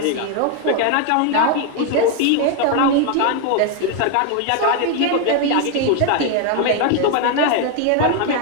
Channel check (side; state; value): both; different; correlation 0.01